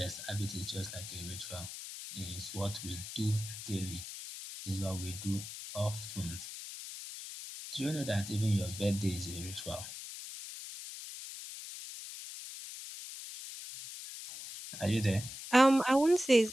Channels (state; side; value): noise; left; hiss, 10 dB below the sound